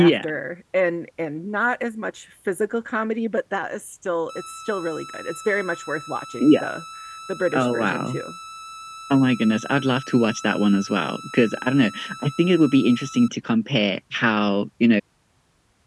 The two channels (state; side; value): identical; both; correlation 1.00